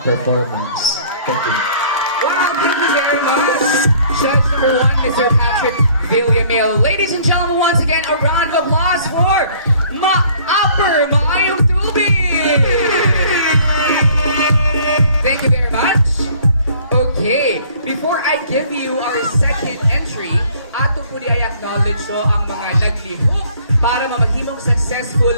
performance. Thank you. Wow, thank you very much. Judge number 1, Mr. Patrick Villamil. Ladies and gentlemen, once again, a round of applause for Upper Maayong Tubig. Thank you very much. Okay, before I give you our second entry, ato po di ay acknowledge so ang mga naglihok para mamahimong successful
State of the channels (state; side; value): inverted; both; correlation -0.57